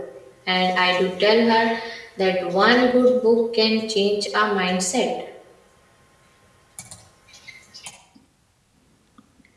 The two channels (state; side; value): identical; both; correlation 1.00